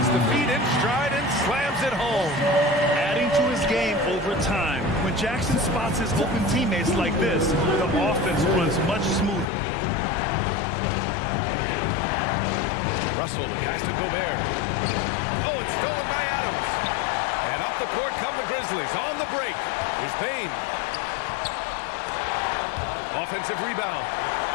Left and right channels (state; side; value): drops out; right; at 9.5 s